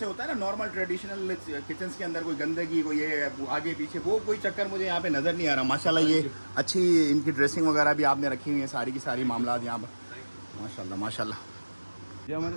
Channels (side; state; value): both; inverted; correlation -1.00